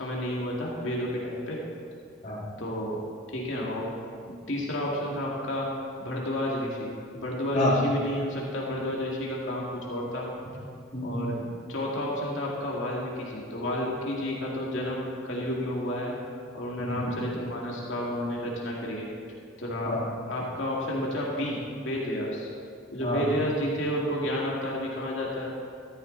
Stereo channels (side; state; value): both; normal; correlation 0.34